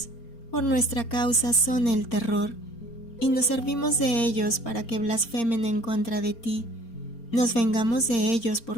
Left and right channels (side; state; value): right; late; 4.3 ms